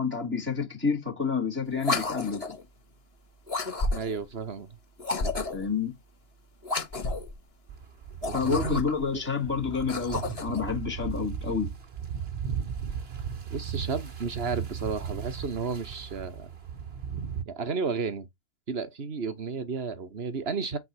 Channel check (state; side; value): late; left; 2.9 ms